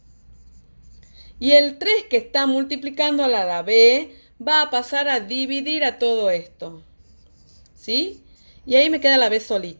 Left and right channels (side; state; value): both; inverted; correlation -1.00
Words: Y el 3 que está multiplicando a la B va a pasar a dividir a todo esto. ¿Sí? Y ahí me queda la B